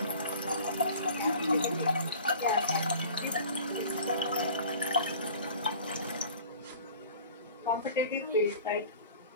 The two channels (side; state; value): both; inverted; correlation -0.45